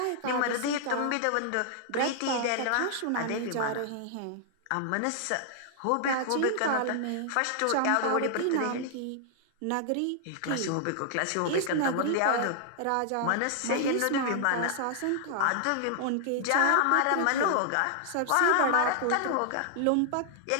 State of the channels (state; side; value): different; both; correlation -0.01